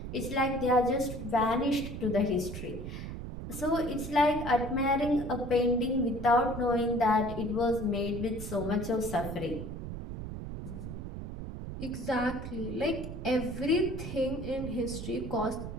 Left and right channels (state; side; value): noise; right; rumble, 8 dB below the sound